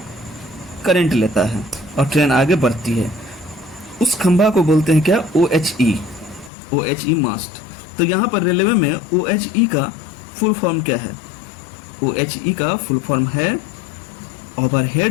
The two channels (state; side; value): drops out; right; at 6.5 s